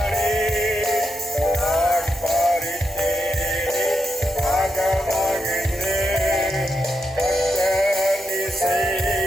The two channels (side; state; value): both; normal; correlation 0.85